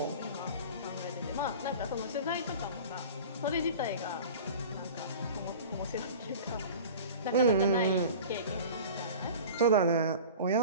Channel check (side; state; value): both; inverted; correlation -0.38